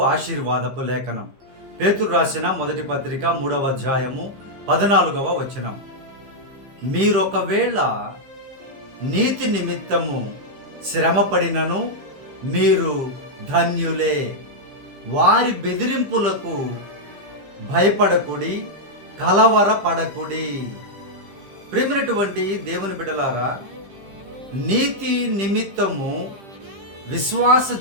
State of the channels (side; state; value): left; late; 15 ms